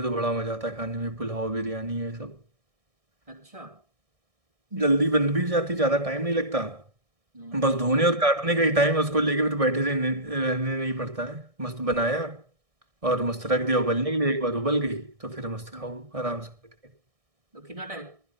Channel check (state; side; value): late; left; 1.6 ms